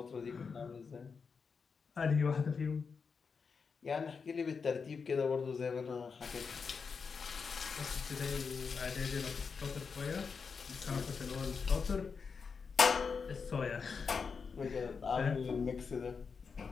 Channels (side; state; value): right; quieter; 5.5 dB